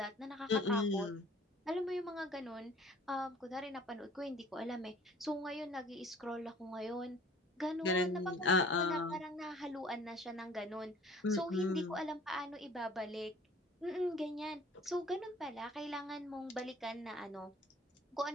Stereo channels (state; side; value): normal; both; correlation 0.51